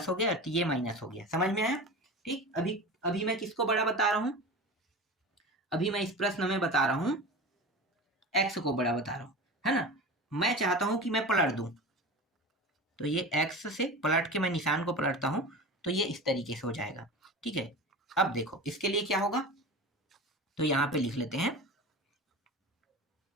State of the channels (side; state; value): both; normal; correlation 0.31